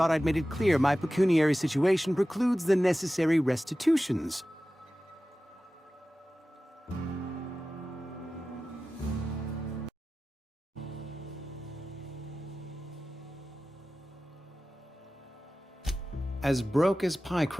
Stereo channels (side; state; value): both; normal; correlation 0.95